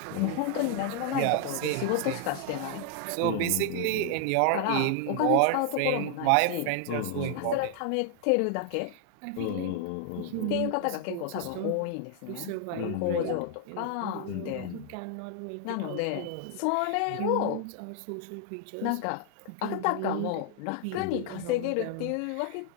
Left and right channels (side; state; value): both; different; correlation 0.00